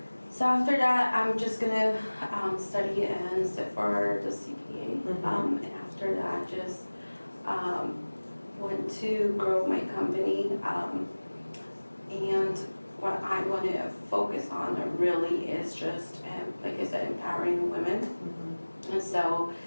So after that, I'm just going to study and sit for the CPA. And after that, just want to grow my company. And what I want to focus on really is just, like I said, empowering women. And so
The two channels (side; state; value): both; inverted; correlation -1.00